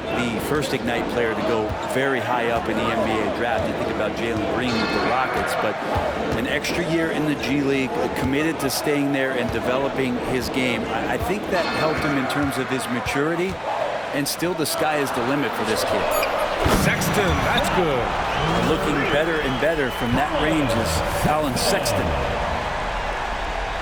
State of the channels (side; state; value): both; identical; correlation 1.00